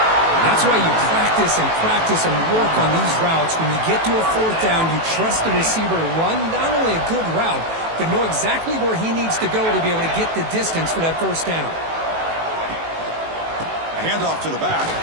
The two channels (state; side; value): late; left; 18 ms